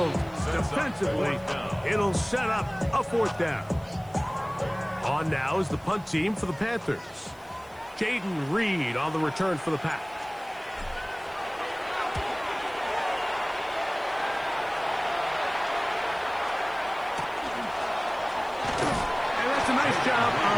defensively. It'll set up a fourth down. On now is the punt team for the Panthers. Jaden Reed on the return for the Pack. A nice job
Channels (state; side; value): noise; right; hiss, 27 dB below the sound